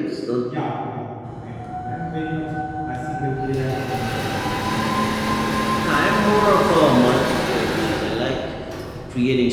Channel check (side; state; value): both; identical; correlation 1.00